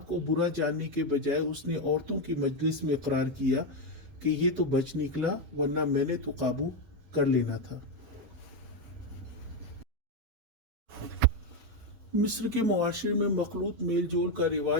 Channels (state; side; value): late; left; 7.2 ms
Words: کو برا جاننے کے بجائے اس نے عورتوں کی مجلس میں اقرار کیا کہ یہ تو بچ نکلا، ورنہ میں نے تو قابو کر لینا تھا۔ مصر کے معاشرے میں مخلوط میل جول کا